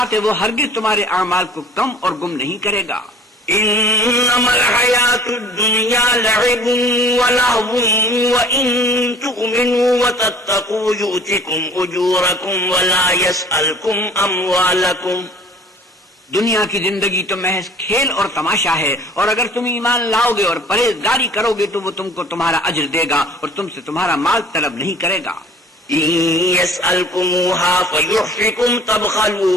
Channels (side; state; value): both; normal; correlation 0.50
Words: ہے، وہ ہرگز تمہارے اعمال کو کم اور گم نہیں کرے گا۔ انما الحیات الدنیا لعب ولہو وان تؤمنوا وتتقوا یؤتکم اجورکم ولا یسألکم اموالکم۔ دنیا کی زندگی تو محض کھیل اور تماشا ہے، اور اگر تم ایمان لاؤ گے اور پرہیزگاری کرو گے تو وہ تم کو تمہارا اجر دے گا اور تم سے تمہارا مال طلب نہیں کرے گا۔ ان يسألكموها فيحفكم